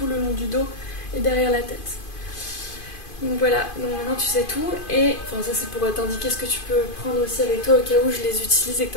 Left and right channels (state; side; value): late; right; 2.5 ms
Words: le long du dos et derrière la tête. Donc voilà, donc maintenant tu sais tout. Et enfin ça c'est pour t'indiquer ce que tu peux prendre aussi avec toi au cas où je les utilise et que